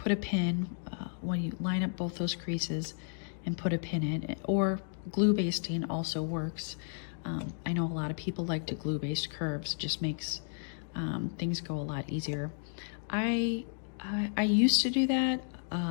a pin when you line up both those creases, and put a pin in, or glue basting also works. I know a lot of people like to glue baste curves, just makes things go a lot easier. I used to do that.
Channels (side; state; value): right; silent; digital silence